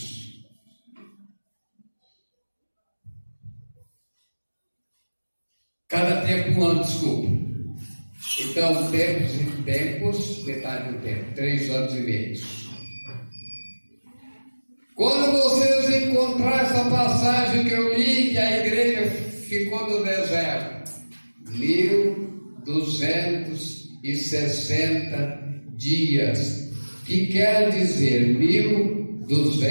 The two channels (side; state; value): both; inverted; correlation -1.00